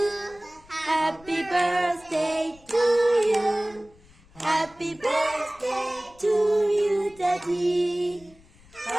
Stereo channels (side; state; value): left; noise; rumble, 26 dB below the sound